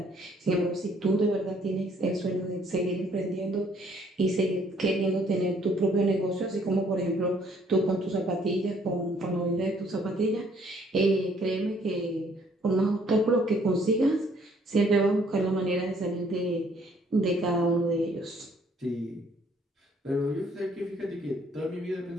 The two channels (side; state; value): both; normal; correlation 0.63